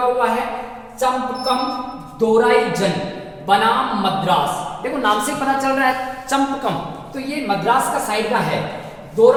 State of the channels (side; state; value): both; identical; correlation 1.00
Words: हुआ है, चंपकम दोराई जन बनाम मद्रास। देखो, नाम से पता चल रहा है चंपकम, तो ये मद्रास का साइड का है।